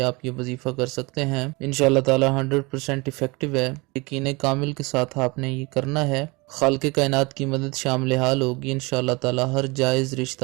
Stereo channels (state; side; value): quieter; left; 26.0 dB